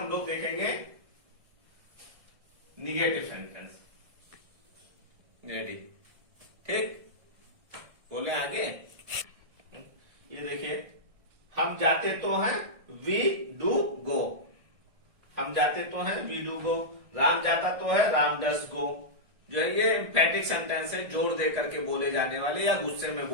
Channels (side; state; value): left; late; 1.6 ms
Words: लोग देखेंगे निगेटिव सेंटेंस। रेडी? ठीक, बोले आगे। ये देखिए, हम जाते तो हैं, वी डू गो। हम जाते तो हैं, वी डू गो। राम जाता तो है, राम डस गो। जो है ये एम्फैटिक सेंटेंस है, जोर दे करके बोले जाने वाले या गुस्से में